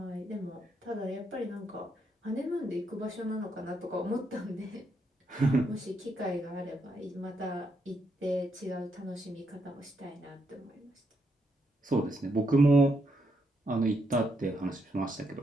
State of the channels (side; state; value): both; normal; correlation 0.78